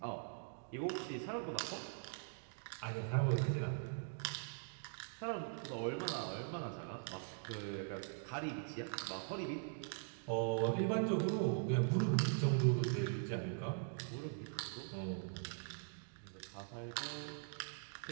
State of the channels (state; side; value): silent; left; digital silence